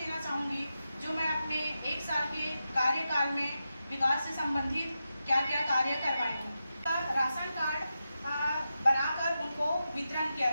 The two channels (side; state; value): both; inverted; correlation -0.89